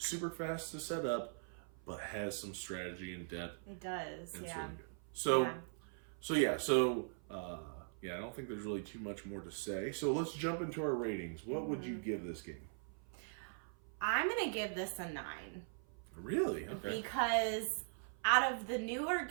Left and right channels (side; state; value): left; silent; 51 dB below the other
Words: fast to set up, but has some strategy and depth. It does, And yeah. I don't think there's really too much more to say. So let's jump into our ratings. What would you give this game? I'm going to give this a 9. Really? Okay. Because out of the newer